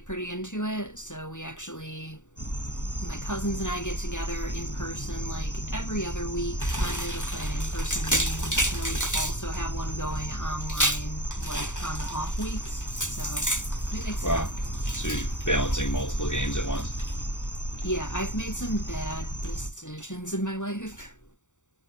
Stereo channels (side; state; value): right; late; 0.85 ms